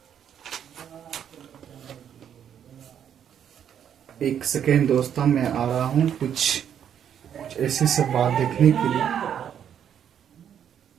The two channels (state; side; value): quieter; left; 9.0 dB